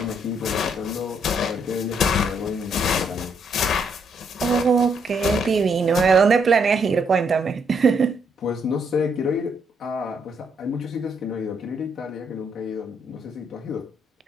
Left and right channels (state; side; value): normal; both; correlation 0.74